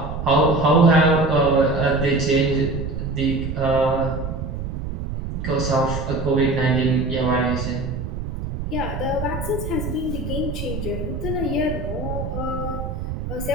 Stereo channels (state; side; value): noise; right; rumble, 6 dB below the sound